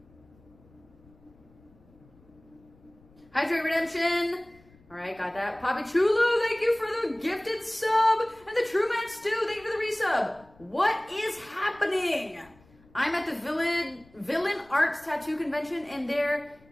Hydrate Redemption. All right, got that. Poppy Chulu, thank you for the gifted sub. And the True Man Stew, thank you for the resub. What is happening? I'm at the Villain Arts Tattoo Convention, and there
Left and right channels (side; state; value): left; noise; rumble, 28 dB below the sound